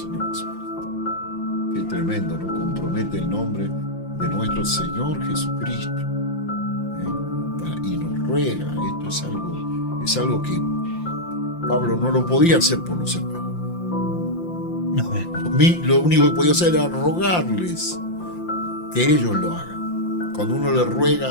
Jesucristo. Qué tremendo, ¿no? Compromete el nombre de nuestro Señor Jesucristo. Y nos ruega. Esto es algo que Pablo no lo podía hacer por los hermanos. Lo único que podía hacer era rogarles que ellos lo hagan. Cuando uno le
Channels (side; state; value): right; late; 5.8 ms